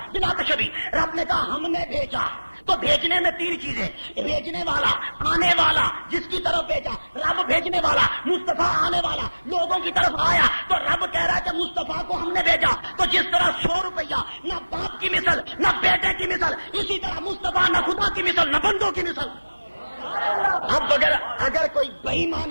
بلا تشبیہ رب نے کہا ہم نے بھیجا. تو بھیجنے میں 3 چیزیں، بھیجنے والا، آنے والا، جس کی طرف بھیجا. رب بھیجنے والا، مصطفیٰ آنے والا، لوگوں کی طرف آیا. تو رب کہہ رہا ہے کہ مصطفیٰ کو ہم نے بھیجا. تو جس طرح 100 روپیہ نہ باپ کی مثل، نہ بیٹے کی مثل، اسی طرح مصطفیٰ نہ خدا کی مثل، نہ بندوں کی مثل. اب اگر کوئی بے ایمان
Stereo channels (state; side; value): inverted; both; correlation -1.00